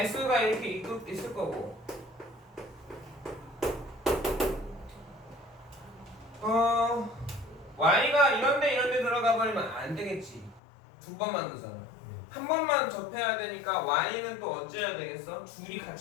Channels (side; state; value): right; drops out; at 10.6 s